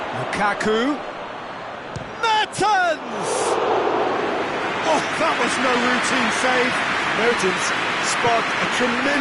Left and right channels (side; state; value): both; identical; correlation 1.00